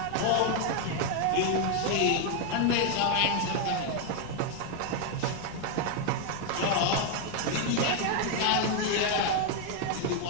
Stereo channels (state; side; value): different; both; correlation 0.01